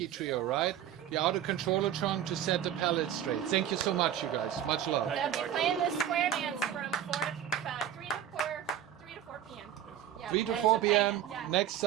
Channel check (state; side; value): quieter; left; 10.6 dB